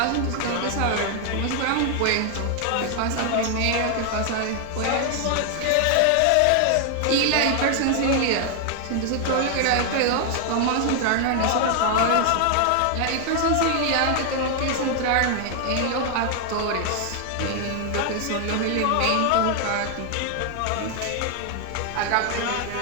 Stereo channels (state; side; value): different; both; correlation 0.00